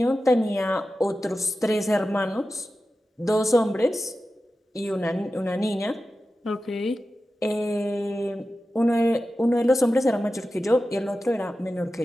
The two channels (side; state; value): both; normal; correlation 0.93